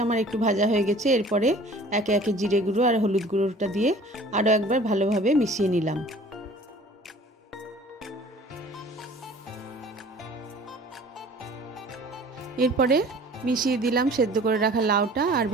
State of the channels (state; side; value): normal; both; correlation 0.48